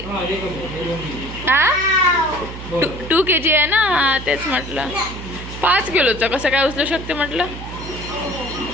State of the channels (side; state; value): right; noise; hum, 11 dB below the sound